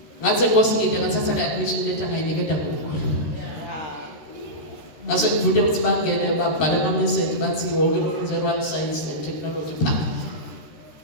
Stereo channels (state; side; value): late; right; 13 ms